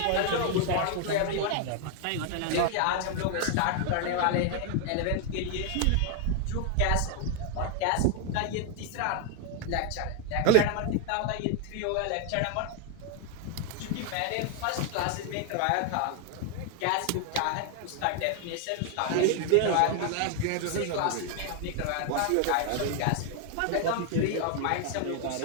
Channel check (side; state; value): both; different; correlation 0.00